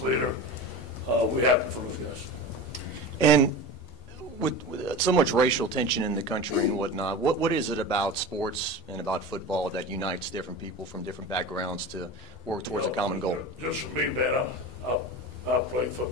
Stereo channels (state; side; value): normal; both; correlation 0.30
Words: leader. We happy for those guys. And with so much racial tension in the country and whatnot, what is it about sports and about football that unites different people from different backgrounds to work towards a common goal? Just for me, man, I played